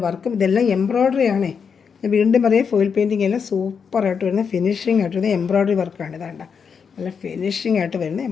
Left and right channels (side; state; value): right; quieter; 6.3 dB